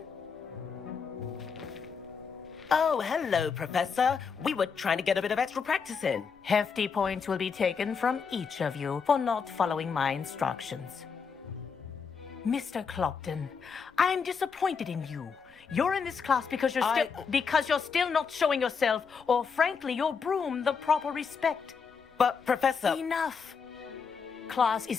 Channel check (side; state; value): right; quieter; 5.9 dB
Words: Oh, hello, Professor. We were trying to get a bit of extra practice in. Hefty points will be taken from each of you for not following my instructions. Mr. Clopton, I'm disappointed in you. You're in this class because you're still not showing yourself, or frankly, your broom the proper respect. But, Professor... Enough. Class